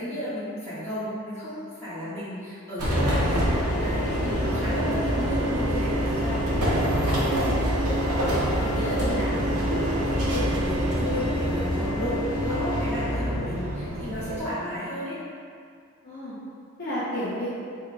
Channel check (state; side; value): normal; both; correlation 0.53